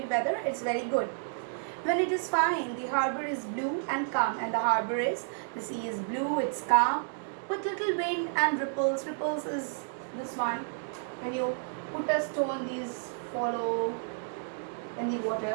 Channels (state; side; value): silent; left; digital silence